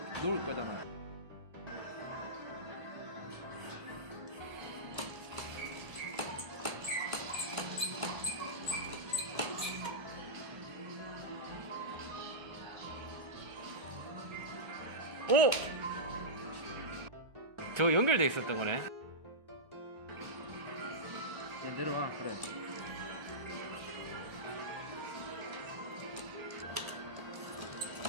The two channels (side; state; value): left; late; 1.3 ms